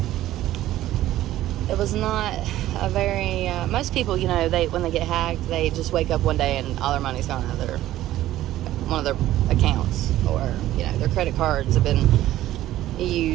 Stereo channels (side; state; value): left; quieter; 14.2 dB